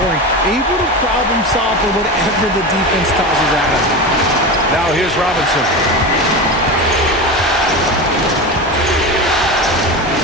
able to problem solve for whatever the defense tosses at him. Now here's Robinson.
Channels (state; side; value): normal; both; correlation 0.24